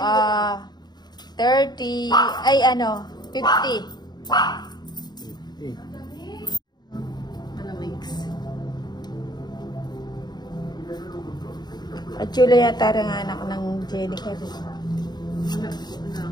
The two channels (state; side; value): late; right; 0.20 ms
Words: 30. Ay, ano? 50. Malamix. At Chula yata rin anak ng Jenica. Wala ko